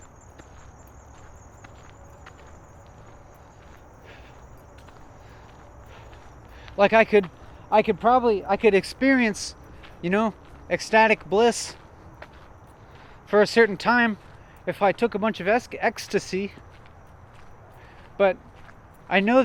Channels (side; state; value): both; identical; correlation 1.00